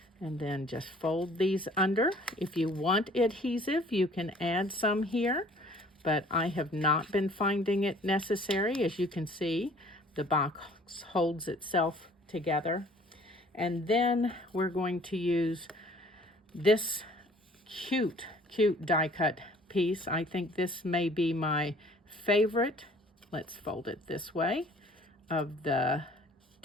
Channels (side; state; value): both; normal; correlation 0.54